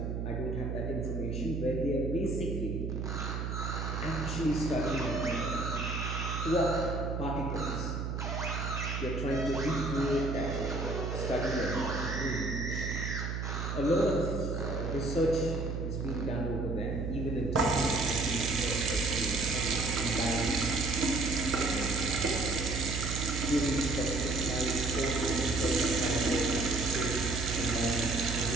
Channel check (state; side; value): noise; right; hum, 3 dB below the sound